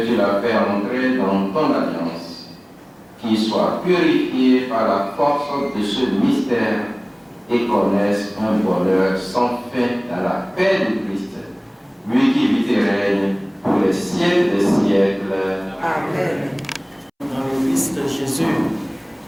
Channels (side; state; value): both; identical; correlation 1.00